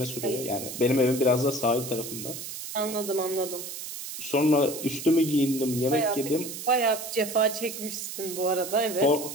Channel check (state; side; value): noise; right; hiss, 9 dB below the sound